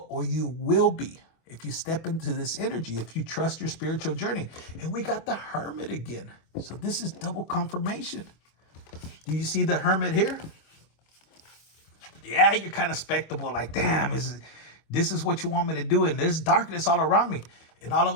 or you will be, if you step into this energy, if you trust your spiritual journey. And we got the Hermit again. So this is double confirmation. Do you see the Hermit here? Yeah, you're kind of spectacle, like, damn, this is what you want me to do, and there's darkness all around me. And all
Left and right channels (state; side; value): late; right; 25 ms